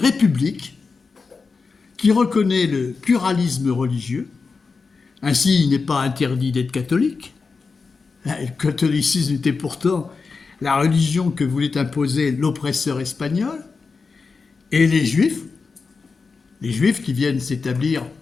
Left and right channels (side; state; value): right; quieter; 4.6 dB